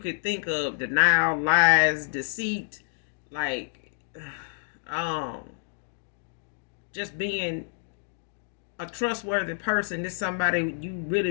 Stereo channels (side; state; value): right; silent; digital silence